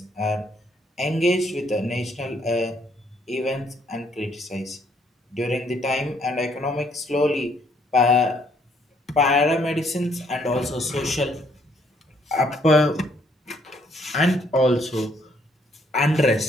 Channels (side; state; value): both; normal; correlation 0.68